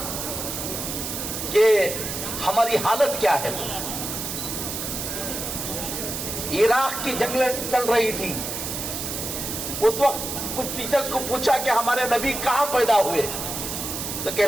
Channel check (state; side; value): noise; right; hiss, 5 dB below the sound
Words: कि हमारी हालत क्या है। इराक की जंगें चल रही थी, उस वक्त कुछ टीचर्स को पूछा कि हमारे नबी कहां पैदा हुए, तो कह